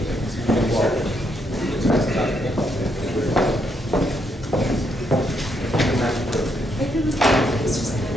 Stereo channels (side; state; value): both; normal; correlation 0.76